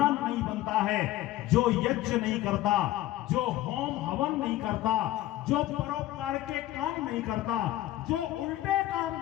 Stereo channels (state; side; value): quieter; right; 15.1 dB